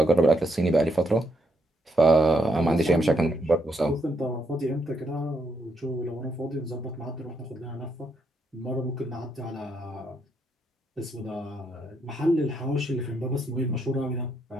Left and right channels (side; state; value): both; normal; correlation 0.77